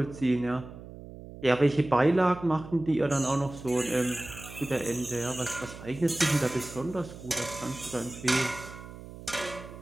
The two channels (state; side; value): noise; right; hum, 14 dB below the sound